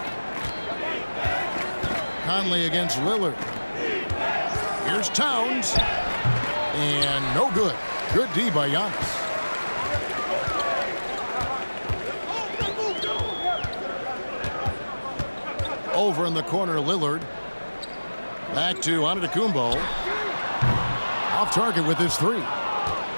Conley against Lillard. Here's Towns. And no good. Good D by Giannis. Over in the corner, Lillard. Back to Antetokounmpo. Off target with his three.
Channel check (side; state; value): both; inverted; correlation -1.00